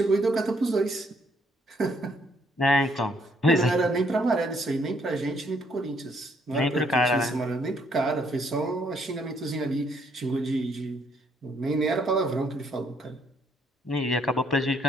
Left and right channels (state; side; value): normal; both; correlation 0.69